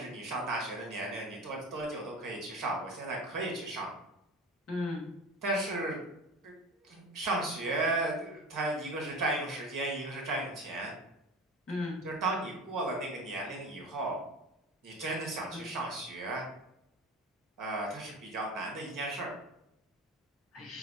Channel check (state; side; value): normal; both; correlation 0.32